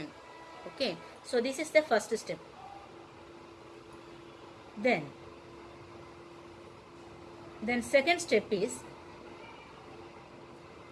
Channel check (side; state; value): both; identical; correlation 1.00